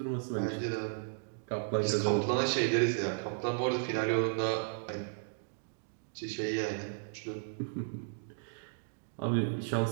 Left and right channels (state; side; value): silent; left; digital silence